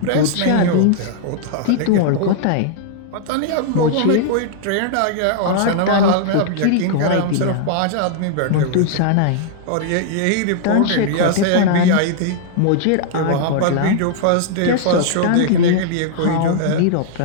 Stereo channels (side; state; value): both; different; correlation -0.01